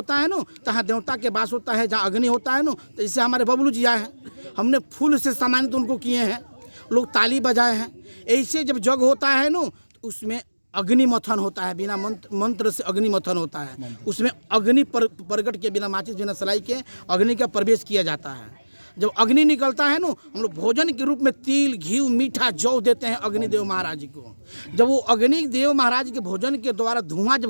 है ना, तहाँ देवता के वास होता है। जहाँ अग्नि होता है ना, तो जैसे हमारे बबलू जी आए हैं, हमने फूल से सम्मानित उनको किए हैं, लोग ताली बजाए हैं। ऐसे जब जग होता है ना, तो उसमें अग्नि मथन होता है, बिना मंत्र से अग्नि मथन होता है। उसमें अग्नि प्रगट के बिना माचिस बिना सलाई के अग्नि का प्रवेश किया जाता है। जब अग्नि निकलता है ना, हम लोग भोजन के रूप में तिल, घी, मीठा, जौ देते हैं अग्निदेव महाराज को। जब वो अग्निदेव महाराज के भोजन के द्वारा धुआं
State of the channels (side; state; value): both; inverted; correlation -1.00